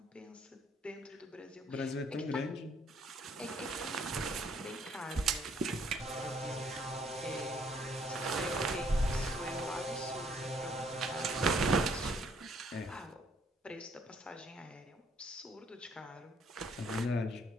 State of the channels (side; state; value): both; normal; correlation 0.65